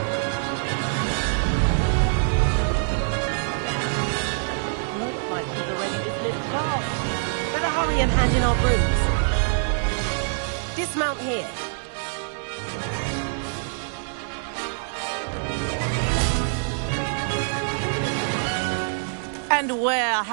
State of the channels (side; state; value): left; silent; digital silence